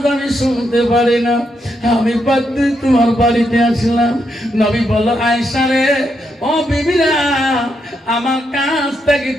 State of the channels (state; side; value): normal; both; correlation 0.80